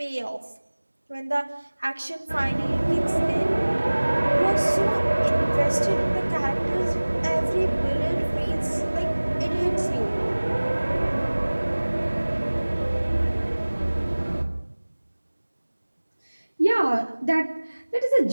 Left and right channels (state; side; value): inverted; both; correlation -1.00